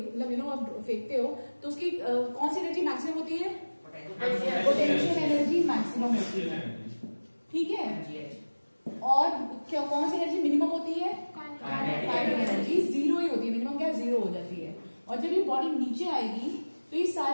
यू नो आप फेंकते हो तो उसकी कौन सी एनर्जी मैक्सिमम होती है, पोटेंशियल एनर्जी मैक्सिमम होती है, ठीक है? और क्या कौन सी एनर्जी मिनिमम होती है, काइनेटिक एनर्जी 0 ही होती है, मिनिमम क्या 0 हो जाती है। और जब ये बॉडी नीचे आएगी तो ये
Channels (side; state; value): both; inverted; correlation -1.00